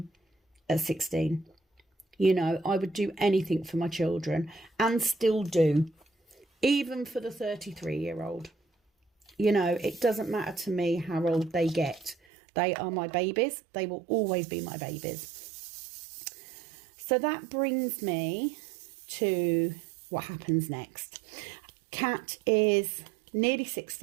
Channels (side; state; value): left; drops out; at 12.2 s